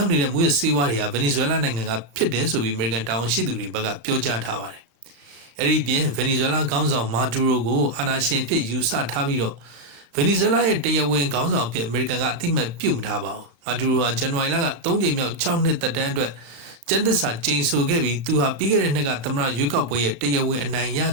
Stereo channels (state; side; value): late; left; 35 ms